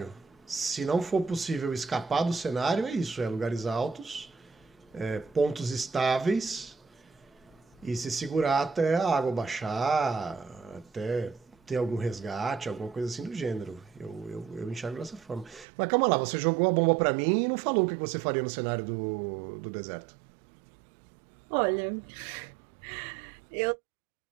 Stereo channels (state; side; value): drops out; left; at 15.7 s